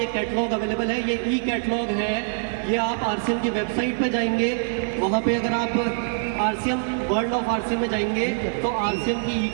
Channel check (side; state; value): left; silent; 61 dB below the other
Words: कैटलॉग अवेलेबल है। ये ई कैटलॉग है, ये आप RCM की वेबसाइट पे जाएंगे, वहाँ पे अगर आप RCM वर्ल्ड ऑफ RCM में जाएंगे तो RCM की ई